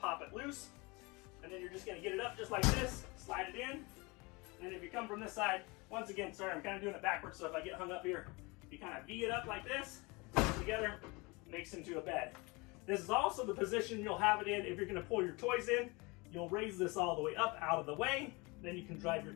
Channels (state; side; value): quieter; right; 26.2 dB